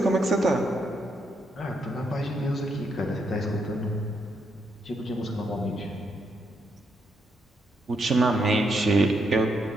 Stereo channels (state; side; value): normal; both; correlation 0.78